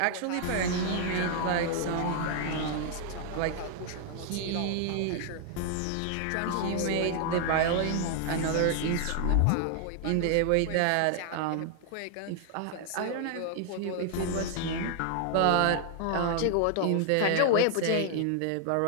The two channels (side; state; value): both; different; correlation 0.00